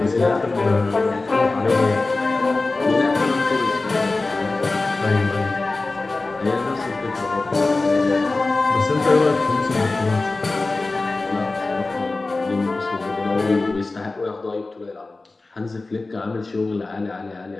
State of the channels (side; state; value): right; quieter; 3.4 dB